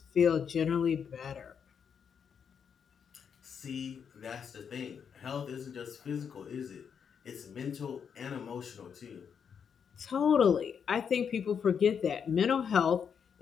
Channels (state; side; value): quieter; right; 7.1 dB